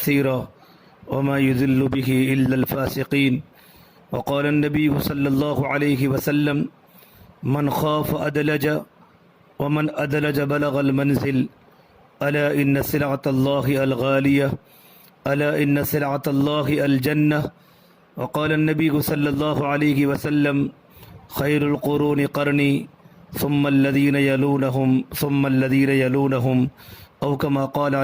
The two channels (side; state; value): both; identical; correlation 1.00